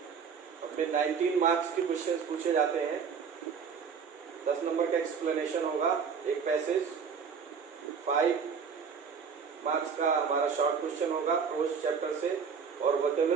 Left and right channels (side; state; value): left; quieter; 6.3 dB